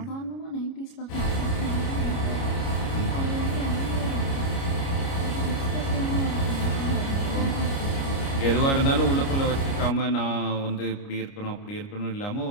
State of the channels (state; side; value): late; right; 29 ms